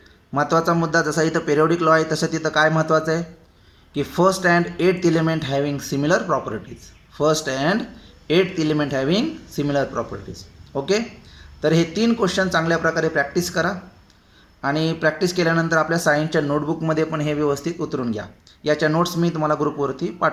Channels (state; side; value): identical; both; correlation 1.00